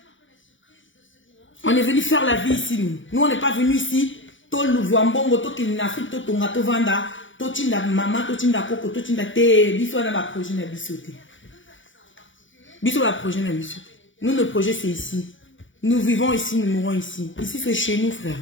On est venu faire la vie ici, nous. Nous, on n'est pas venu ici. Tout le voambongo, tout le Afrique, tout le Tonga, tout Vanda, tout le maman, tout le Coco, tout le Té. Biso, on a un projet de bisoté. Biso, un projet de bisoté. Nous, notre projet, c'est ici. Nous vivons ici, nous mourons ici. Ici, c'est chez nous, frère.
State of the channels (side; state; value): right; late; 0.56 ms